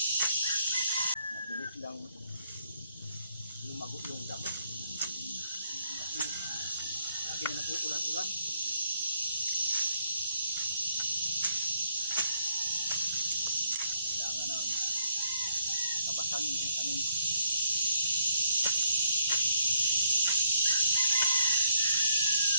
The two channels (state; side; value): inverted; both; correlation -0.73